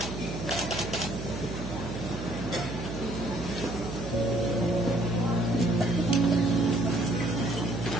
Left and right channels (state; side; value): noise; right; hum, 7 dB below the sound